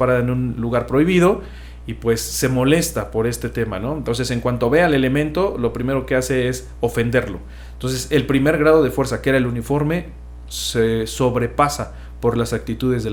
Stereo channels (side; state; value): both; identical; correlation 1.00